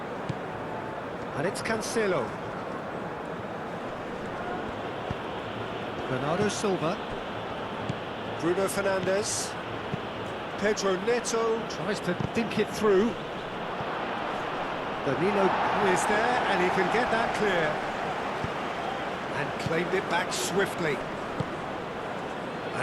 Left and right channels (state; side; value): identical; both; correlation 1.00